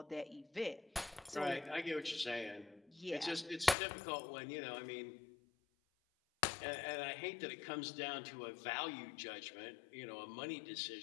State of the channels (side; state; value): right; drops out; at 3.8 s